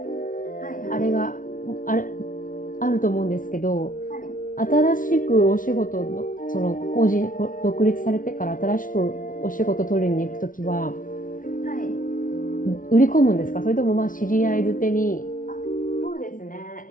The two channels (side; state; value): right; late; 0.39 ms